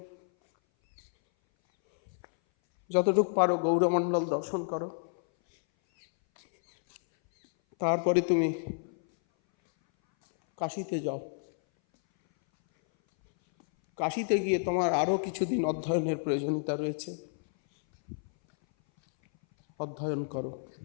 যতটুকু পারো গৌরমণ্ডল দর্শন করো, তারপরে তুমি কাশীতে যাও। কাশীতে গিয়ে তোমার আরও কিছুদিন অধ্যয়নের প্রয়োজনীয়তা রয়েছে, অধ্যয়ন করো।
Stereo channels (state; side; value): silent; right; 58 dB below the other